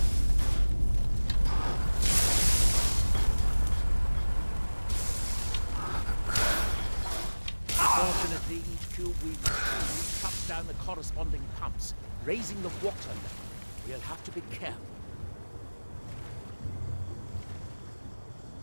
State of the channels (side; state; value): both; inverted; correlation -1.00